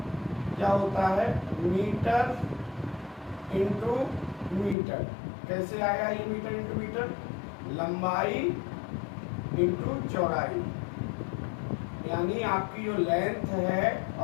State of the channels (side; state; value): right; drops out; at 4.8 s